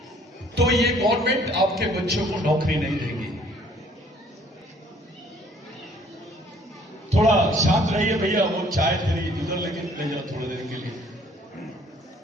तो ये गवर्नमेंट आपके बच्चों को नौकरी नहीं देगी। थोड़ा शांत रहिए भैया, वो चाय तेरी इधर लेके ले जाओ थोड़ी देर के लिए।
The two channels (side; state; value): both; normal; correlation 0.59